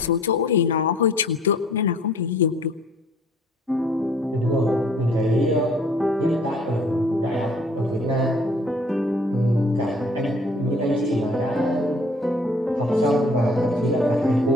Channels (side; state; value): both; normal; correlation 0.56